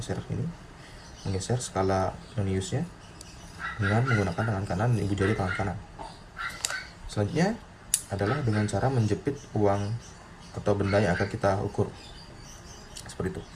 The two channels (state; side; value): identical; both; correlation 1.00